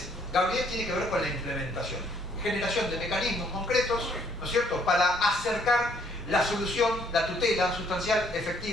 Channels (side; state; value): both; normal; correlation 0.66